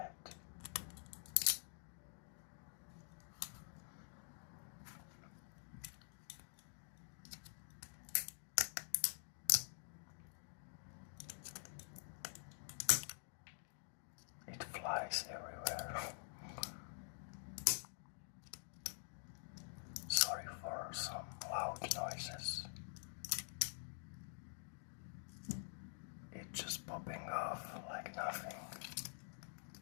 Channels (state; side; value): silent; right; digital silence